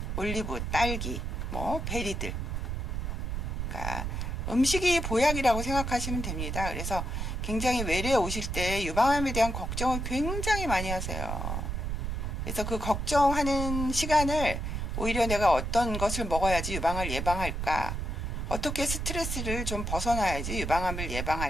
올리브, 딸기, 뭐 베리들. 그러니까 음식이 보약이라고 생각하시면 됩니다. 그래서 굉장히 외래에 오실 때 유방암에 대한 걱정을 굉장히 많이 하세요. 그래서 그 걱정하는 시간을 오히려 내가 어떤 것을 먹어야지 유방을 예방할까? 어떻게 스트레스를 좀 벗어나야지 유방암을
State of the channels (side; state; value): right; noise; rumble, 3 dB below the sound